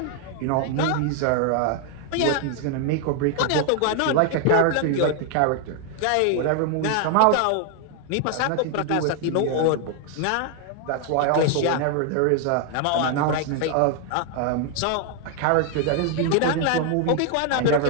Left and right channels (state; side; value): different; both; correlation 0.00